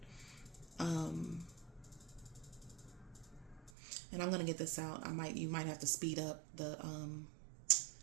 and I'm gonna get this out. You might have to speed up the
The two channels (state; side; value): drops out; left; at 3.7 s